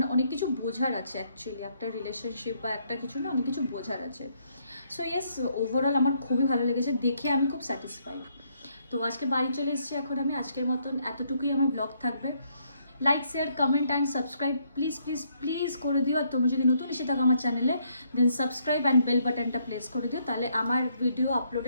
অনেক কিছু বোঝার আছে অ্যাকচুয়ালি, একটা রিলেশনশিপ বা একটা কিছু না, অনেক কিছু বোঝার আছে। সো ইয়েস, ওভারঅল আমার খুবই ভালো লেগেছে, দেখে আমি খুব স্যাটিসফাইড। তো আজকে বাড়ি চলে এসেছি, এখন আমি আজকের মতন এতটুকুই আমার ব্লগ থাকবে। Like, share, comment and subscribe please please please করে দিও। আর তোমরা যদি নতুন এসে থাকো আমার চ্যানেলে, দেন সাবস্ক্রাইব অ্যান্ড বেল বাটনটা প্রেস করে দিও, তাহলে আমার ভিডিও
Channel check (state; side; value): inverted; both; correlation -0.72